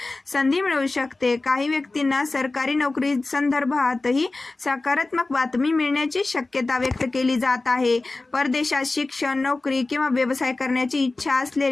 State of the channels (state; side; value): quieter; right; 3.2 dB